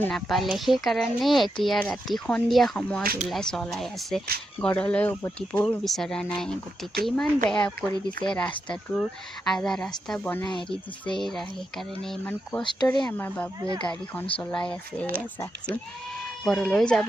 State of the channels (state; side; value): normal; both; correlation 0.85